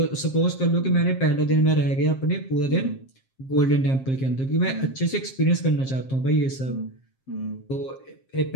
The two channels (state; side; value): late; right; 7.5 ms